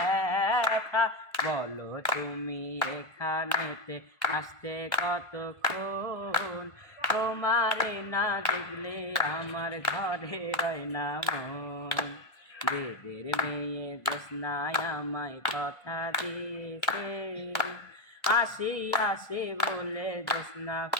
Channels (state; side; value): late; right; 1.4 ms